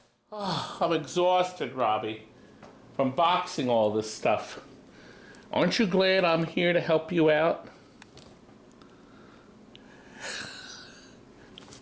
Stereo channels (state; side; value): identical; both; correlation 1.00